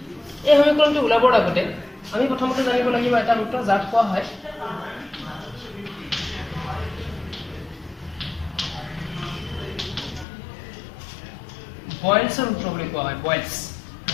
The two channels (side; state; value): right; drops out; at 10.2 s